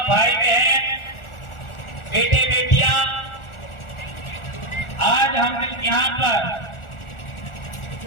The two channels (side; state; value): right; late; 1.4 ms